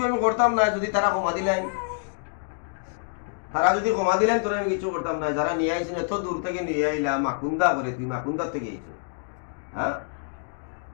আমি করতাম না যদি তারা কমা দিলেন, তারা যদি কমা দিলেন তোরে আমি কিছু করতাম না। যারা নিয়ে আইছেন এত দূর থেকে নিয়ে আইলাম মাকুন্দা করে, তুই মাকুন্দা থেকে আইছ? হ্যাঁ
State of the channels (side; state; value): right; silent; digital silence